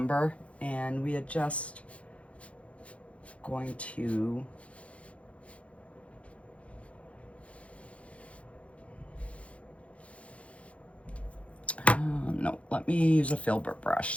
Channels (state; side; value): late; right; 0.063 ms